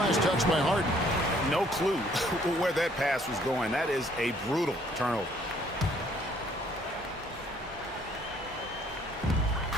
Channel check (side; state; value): both; normal; correlation 0.62